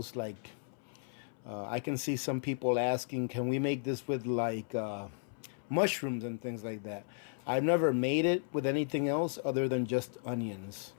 Like, I can see some people asking, can we make this with like mushrooms and things like that? I've never made it with anything else other than just onions.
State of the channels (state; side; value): silent; right; 55 dB below the other